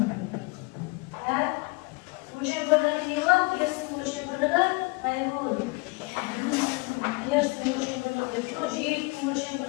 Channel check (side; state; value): right; quieter; 27.6 dB